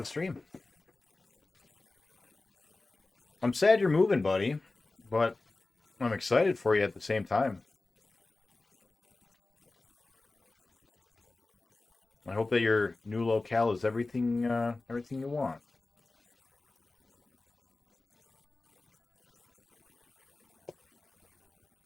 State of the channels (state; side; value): quieter; right; 3.3 dB